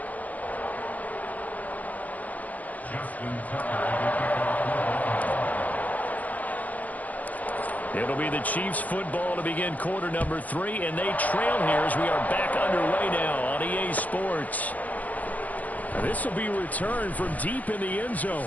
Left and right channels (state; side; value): late; right; 0.077 ms